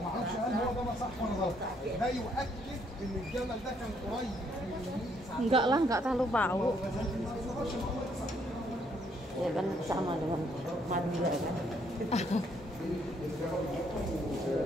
ما اعرفش هل هو ده صح ولا غلط. ده يؤكد ان الجبل ده كان قريب Enggak lah, enggak terlalu bau. Ya kan sama dengan Madura kan.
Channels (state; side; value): normal; both; correlation 0.70